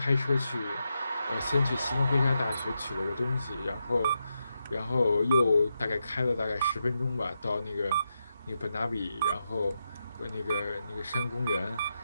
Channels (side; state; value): both; inverted; correlation -0.86